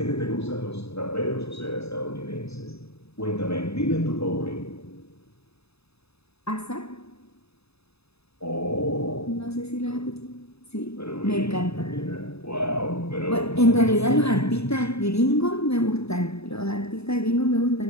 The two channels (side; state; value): right; late; 0.79 ms